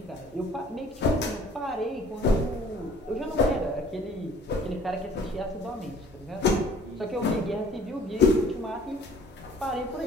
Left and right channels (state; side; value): normal; both; correlation 0.53